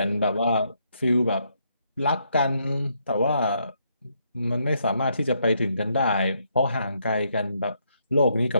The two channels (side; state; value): both; inverted; correlation -0.75